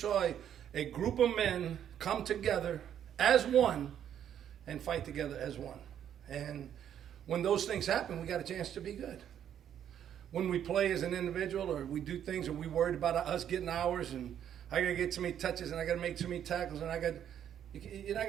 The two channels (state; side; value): quieter; left; 9.7 dB